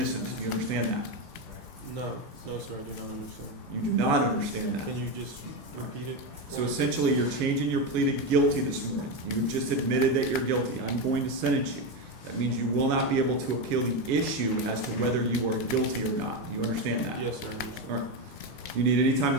Do you understand that? No. No, sir. I do not understand. You do not understand that. Can you just repeat it? So essentially, you're changing your plea to guilty this morning. You've just admitted that you're guilty. I'm going to sentence you. That means you will not be able to appeal the issue as to whether you are guilty or not. Do you understand that? Yes, sir. I understand. All right. Do you need any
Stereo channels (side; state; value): both; normal; correlation 0.12